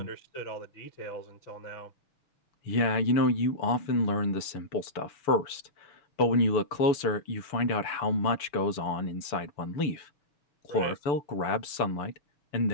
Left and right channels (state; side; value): late; right; 6.9 ms